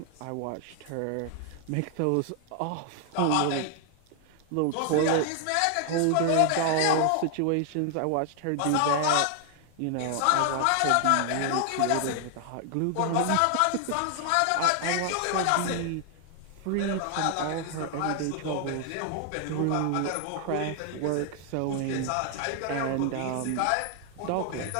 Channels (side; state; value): both; different; correlation 0.00